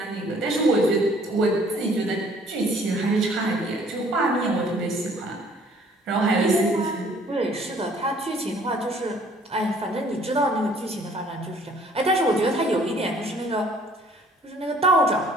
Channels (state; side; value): normal; both; correlation 0.57